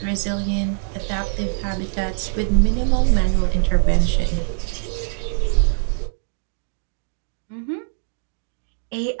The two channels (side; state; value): left; silent; digital silence